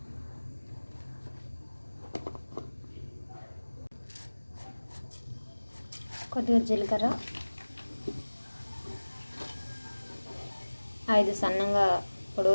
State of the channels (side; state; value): both; inverted; correlation -1.00